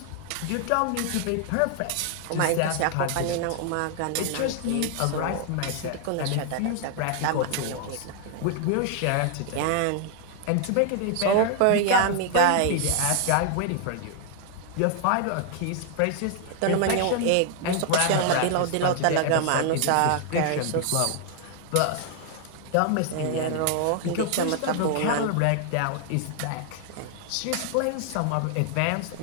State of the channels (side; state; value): both; different; correlation 0.00